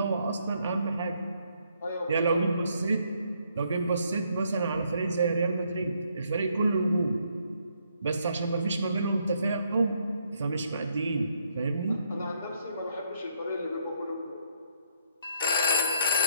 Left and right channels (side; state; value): both; inverted; correlation -0.72